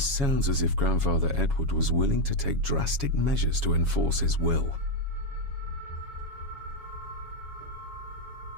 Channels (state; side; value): late; left; 7.2 ms